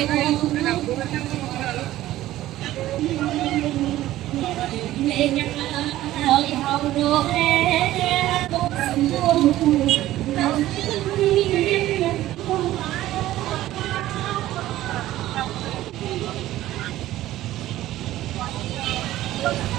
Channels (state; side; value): quieter; left; 14.8 dB